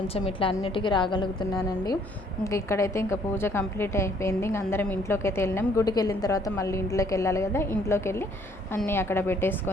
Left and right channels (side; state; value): both; normal; correlation 0.63